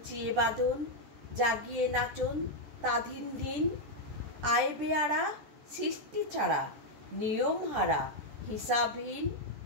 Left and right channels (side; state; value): left; late; 14 ms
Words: বাঁধন, জাগিয়ে নাচন তাধিন দিন। আয় বেয়ারা সৃষ্টি ছাড়া নিয়ম হারা হিসাবহীন।